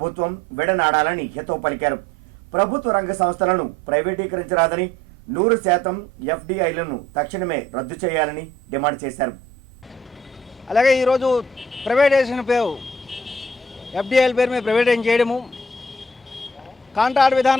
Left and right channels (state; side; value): normal; both; correlation 0.58